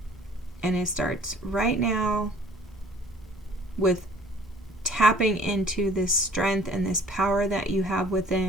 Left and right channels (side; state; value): both; normal; correlation 0.53